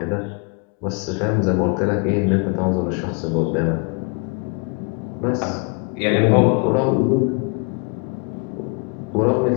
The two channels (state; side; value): quieter; right; 34.7 dB